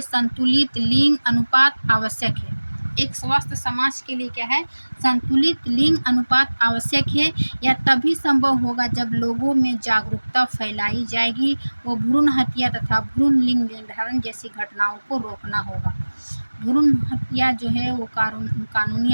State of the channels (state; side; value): inverted; both; correlation -1.00